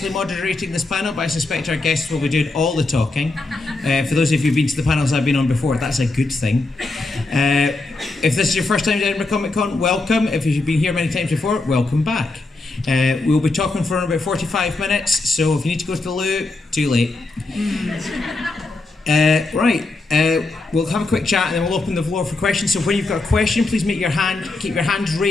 moderating this panel, but I suspect our guests will be doing all the talking. For those of you who've been to the panels I've been on before, that's a good thing. If this is your first time to Edinburgh Comic Con, welcome. If you've been here many times before, welcome back. We'll be talking for about 45 minutes, so if you need to go to the loo, too late. We'll have a quick chat and then we'll open the floor for questions. So when you've got a question, please keep your hands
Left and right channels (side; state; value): right; quieter; 3.3 dB